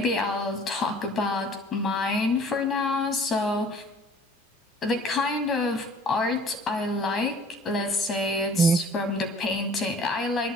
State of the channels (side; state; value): both; normal; correlation 0.51